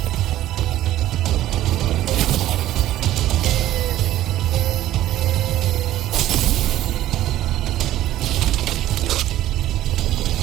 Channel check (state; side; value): quieter; left; 13.8 dB